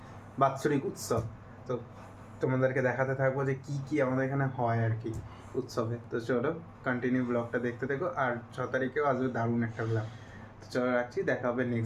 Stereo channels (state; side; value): identical; both; correlation 1.00